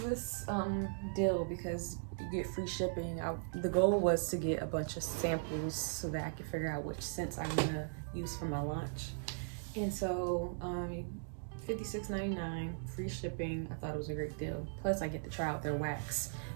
deal because you get free shipping. The goal was to get a bunch of samples so that I could figure out which scents I'm gonna use for my launch. And so $56.99, free shipping. I thought it was a great deal. Plus I get to try out their wax,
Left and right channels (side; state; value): left; silent; digital silence